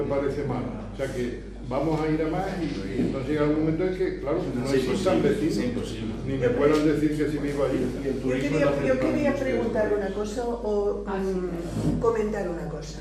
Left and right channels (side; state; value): both; identical; correlation 1.00